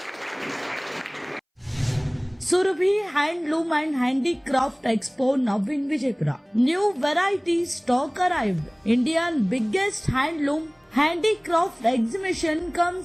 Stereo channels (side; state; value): both; identical; correlation 1.00